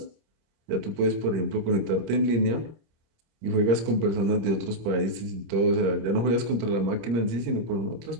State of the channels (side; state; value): left; late; 26 ms